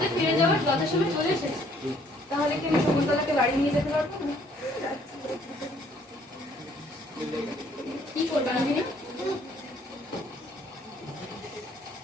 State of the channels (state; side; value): normal; both; correlation 0.62